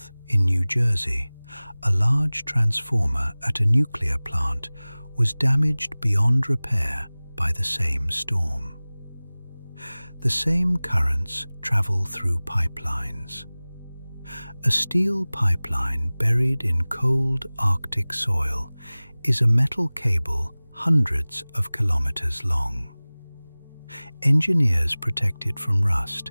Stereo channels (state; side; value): inverted; both; correlation -0.99